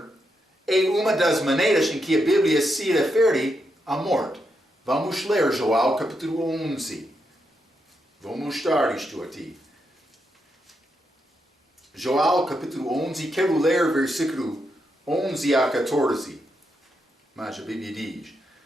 é uma das maneiras em que a Bíblia se refere à morte. Vamos ler Joel capítulo 11. Vou mostrar isto a ti. Joel capítulo 11, quero ler versículo 11 a 14. Mas a Bíblia diz:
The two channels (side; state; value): both; normal; correlation 0.82